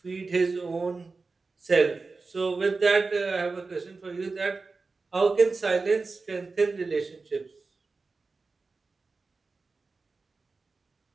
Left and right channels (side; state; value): left; quieter; 4.0 dB